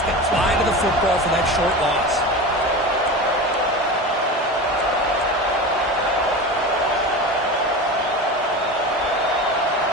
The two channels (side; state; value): both; normal; correlation 0.28